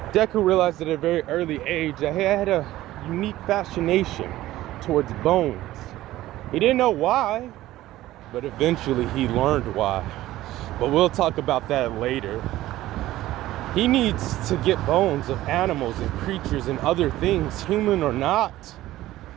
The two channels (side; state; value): left; quieter; 15.5 dB